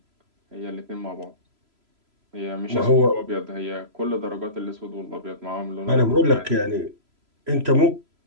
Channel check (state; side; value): late; left; 3.0 ms